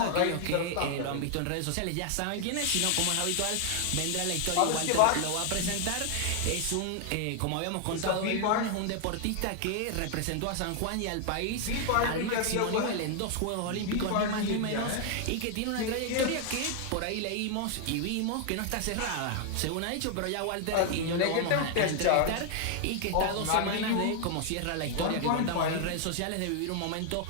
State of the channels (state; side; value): different; both; correlation 0.00